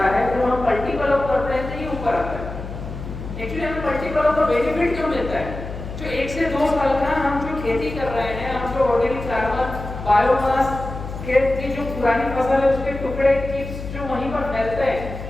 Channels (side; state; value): left; noise; hum, 9 dB below the sound